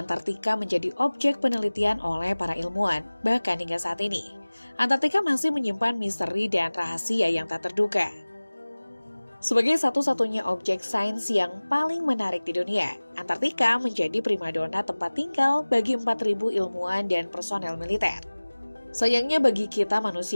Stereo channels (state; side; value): inverted; both; correlation -1.00